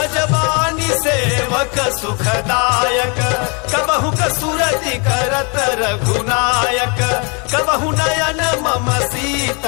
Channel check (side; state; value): right; quieter; 33.2 dB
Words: सेवक सुखदायक कबहु कसुरति करत रघुनायक कबहु नयन मम